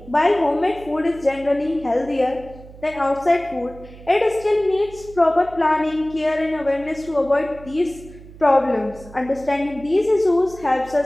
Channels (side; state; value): right; noise; hum, 19 dB below the sound